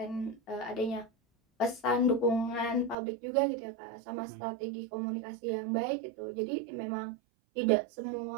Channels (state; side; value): drops out; left; at 3.0 s